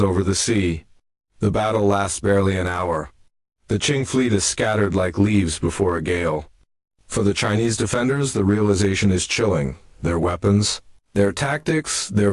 over the sea. The battle lasts barely an hour. The Qing fleet is scattered like leaves before a gale. For the Chinese defenders, the realization is chilling. Their weapons, their tactics, their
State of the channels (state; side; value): identical; both; correlation 1.00